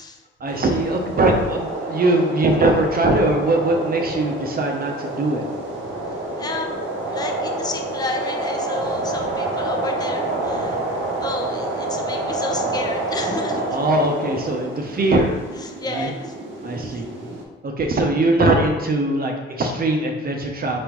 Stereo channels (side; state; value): both; normal; correlation 0.39